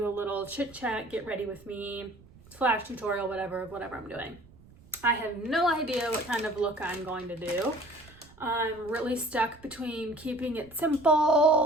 a little chit chat, get ready with me, / tutorial, whatever I'm doing. I have no idea what kind of look I'm going to do. I'm really stuck between keeping it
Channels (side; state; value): right; noise; rumble, 24 dB below the sound